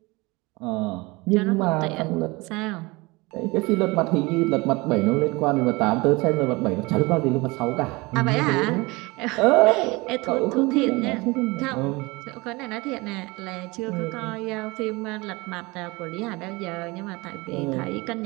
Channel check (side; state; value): left; quieter; 23.9 dB